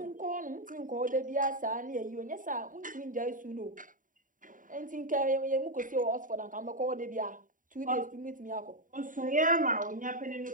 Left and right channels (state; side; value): late; left; 0.39 ms